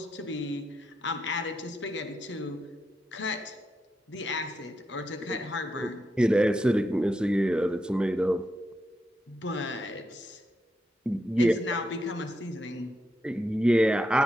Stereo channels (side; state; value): both; normal; correlation 0.84